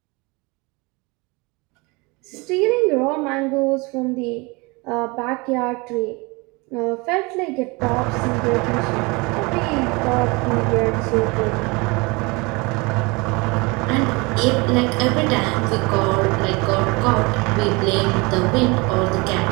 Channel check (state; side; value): quieter; left; 26.5 dB